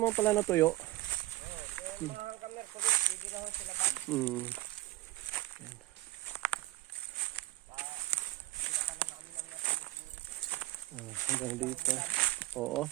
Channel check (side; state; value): left; quieter; 18.3 dB